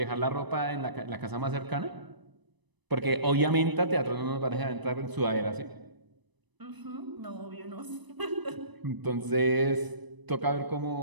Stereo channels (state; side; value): late; left; 1.0 ms